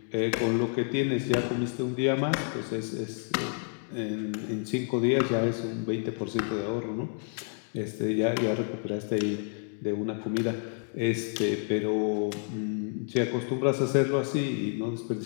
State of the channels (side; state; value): right; silent; 58 dB below the other